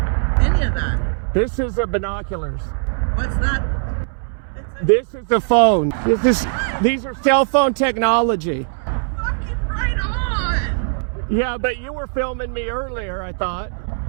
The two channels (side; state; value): left; silent; 66 dB below the other